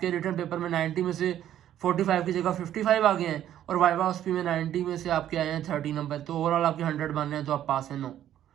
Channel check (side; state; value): left; quieter; 11.4 dB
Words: रिटर्न पेपर में 90 में से 45 की जगह 55 आ गए हैं और वाइवा ऑस्पी में 90 में से आपके आए हैं 30 नंबर, तो ओवरऑल आपके 100 बन रहे हैं तो आप पास हैं। नो,